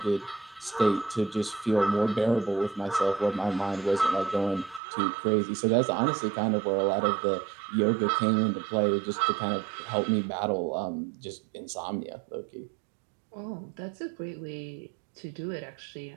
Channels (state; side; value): drops out; left; at 4.8 s